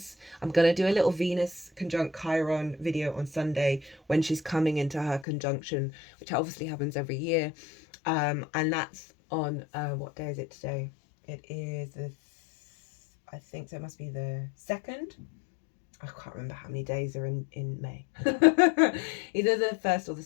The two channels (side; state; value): right; drops out; at 5.2 s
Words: I'm going to do a little Venus conjunct Chiron video on Sunday when she's coming into her conjunction, which obviously happens every year. And that's on, what day is it today? It is, I think so, it must be the 2nd. I can't remember how many days are in May. Either the 1st or the